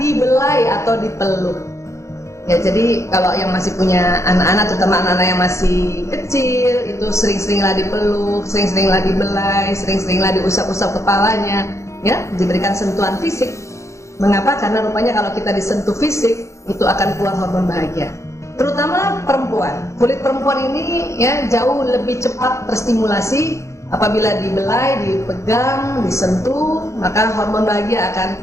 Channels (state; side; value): late; right; 0.14 ms